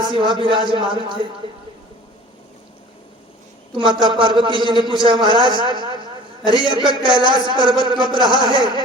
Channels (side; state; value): both; normal; correlation 0.45